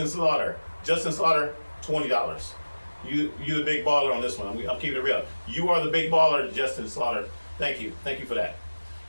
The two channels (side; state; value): both; inverted; correlation -1.00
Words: Slaughter, $20. You the big baller on this one. I'm keeping it real. You are the big baller, Justin Slaughter. Thank you for that.